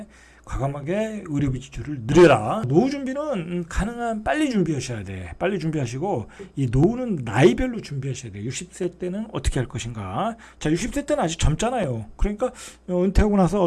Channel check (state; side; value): identical; both; correlation 1.00